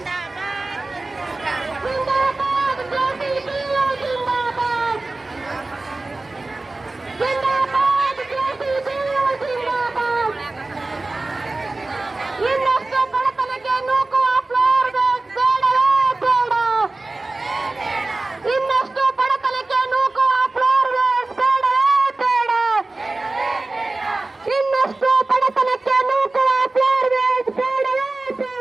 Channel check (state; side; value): quieter; left; 3.1 dB